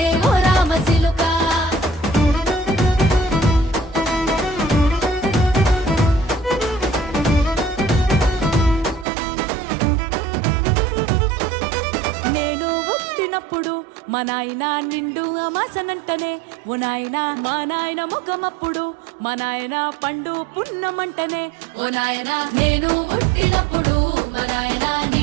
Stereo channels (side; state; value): left; drops out; at 9.1 s